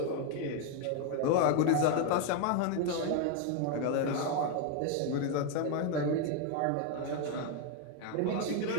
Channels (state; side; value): different; both; correlation 0.01